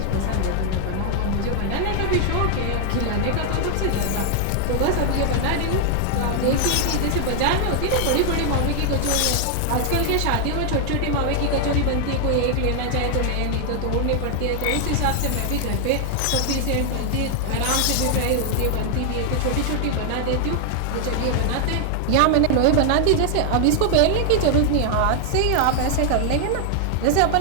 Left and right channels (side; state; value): both; different; correlation 0.00